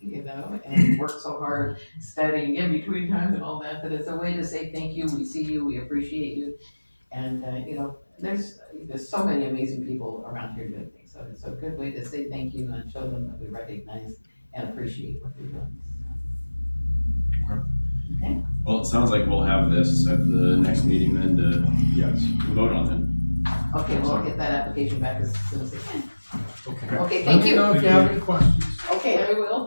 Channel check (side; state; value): both; inverted; correlation -1.00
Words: and work so hard studying in between times and all that it's a way to say thank you, we see you, we appreciate you. And, there's so many amazing people around here doing things, so it's a good way to say thank you and show them that we recognize and appreciate what they're doing. Okay. Well, it sounds like we'll have this at the next meeting then to vote on it. Okay, well, I'll get that application back as soon as I can. Okay. Okay, Let thank me you. know if you have any questions. Okay, I will,